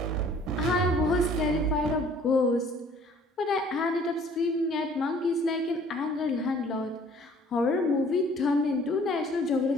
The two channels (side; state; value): both; normal; correlation 0.55